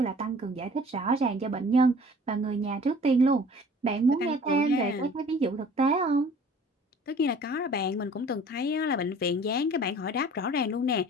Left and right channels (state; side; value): normal; both; correlation 0.49